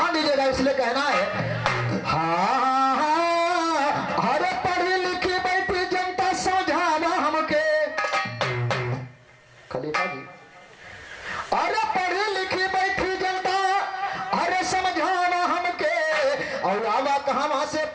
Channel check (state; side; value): identical; both; correlation 1.00